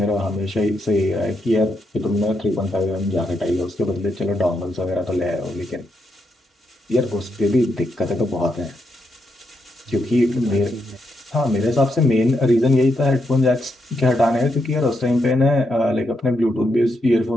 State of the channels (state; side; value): normal; both; correlation 0.81